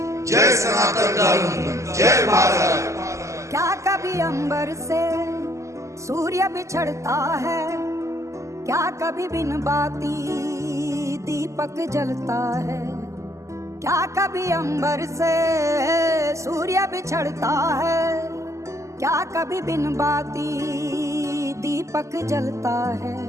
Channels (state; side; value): late; left; 0.15 ms